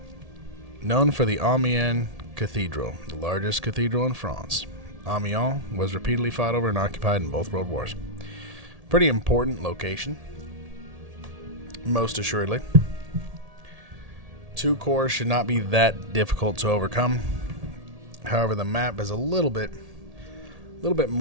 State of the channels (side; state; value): left; late; 1.8 ms